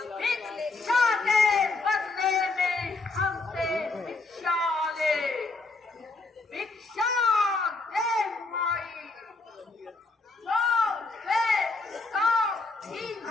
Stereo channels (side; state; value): right; quieter; 3.5 dB